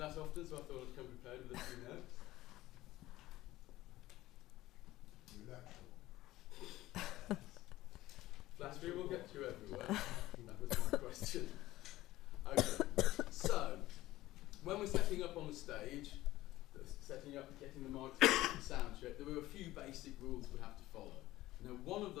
often, so I thought I'd come prepared with a few notes. Flattery will get you everywhere. That was my question. Okay, so when we're setting up on the stage, setting up, getting the microphone, sound check, there were a few basic rules we have to follow. Now, one of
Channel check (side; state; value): right; quieter; 16.4 dB